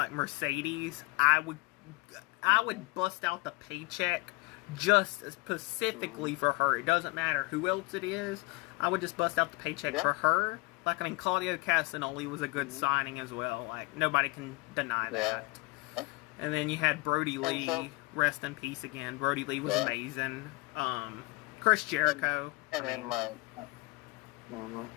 Mercedes, I would bust out the paycheck just specifically for her. It doesn't matter who else it is. I would just bust out the paycheck for her. Like, I mean, Claudio Castagnoli was a good signing as well. Like, nobody can deny that. And then you had Brody Lee, rest in peace again. Brody Lee was amazing. Chris Jericho. And then like,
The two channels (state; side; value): quieter; right; 25.3 dB